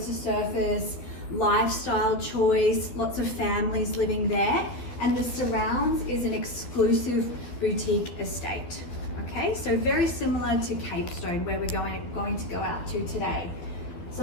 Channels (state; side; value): late; right; 12 ms